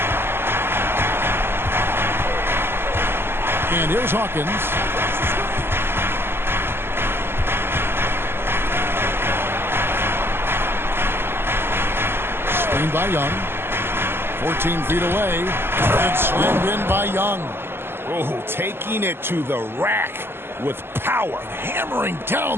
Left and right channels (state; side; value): late; left; 0.11 ms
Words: And here's Hawkins. Screened by Young. 14 feet away. And slammed in by Young. Oh, taking it to the rack with power. Hammering